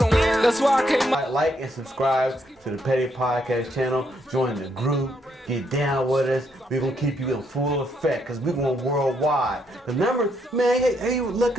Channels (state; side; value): normal; both; correlation 0.75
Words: That's why I came up. Like and subscribe to the Petty Podcast channel. Join the group. Get down with us. We're going to keep you in full effect because we're going worldwide. The numbers, man, hey, you look